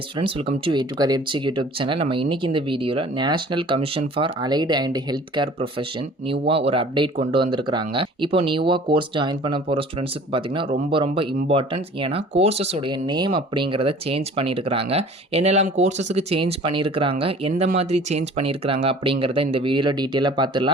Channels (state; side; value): normal; both; correlation 0.48